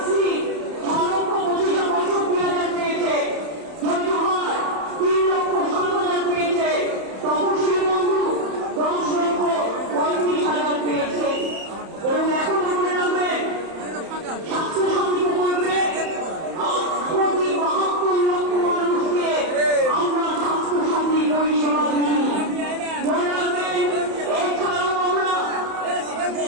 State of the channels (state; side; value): late; left; 31 ms